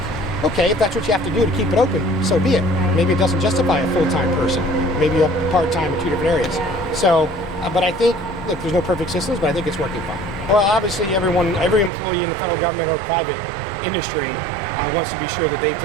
Okay, if that's what you have to do to keep it open, so be it. Maybe it doesn't justify a full-time person. Maybe a part-time in 2 different areas. So, but I think, look, there's no perfect systems, but I think it's working fine. Well, obviously every employee in the federal government or private industry wants to be sure that they've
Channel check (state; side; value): drops out; left; at 11.9 s